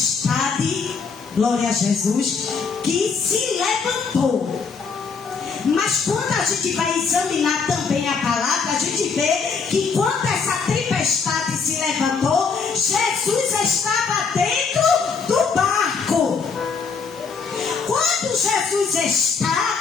glória a Jesus, que se levantou. Mas quando a gente vai examinar também a palavra, a gente vê que quando essa tempestade se levantou, Jesus estava dentro do barco. Quando Jesus está,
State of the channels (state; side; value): quieter; right; 5.3 dB